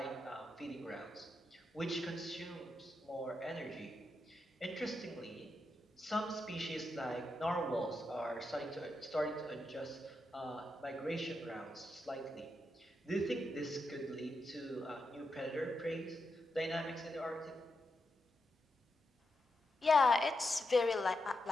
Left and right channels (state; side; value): normal; both; correlation 0.85